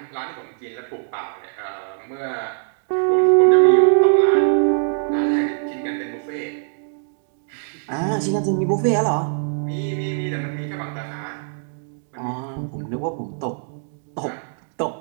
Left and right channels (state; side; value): silent; left; digital silence